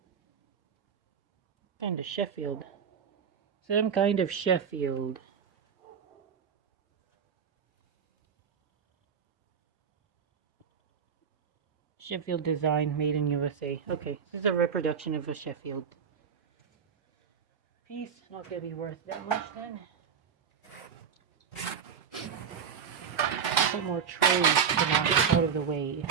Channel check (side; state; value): left; quieter; 7.1 dB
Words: Kind of Sheffield. Some kind of Sheffield. Sheffield design, made in USA. Okay, this is a reproduction of a Sheffield piece. Not gonna be worth that much then. A couple more trays to knock out of the way.